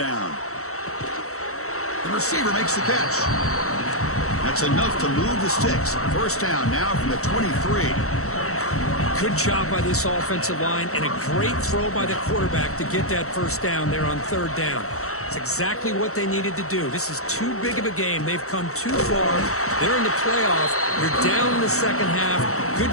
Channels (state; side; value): late; right; 0.64 ms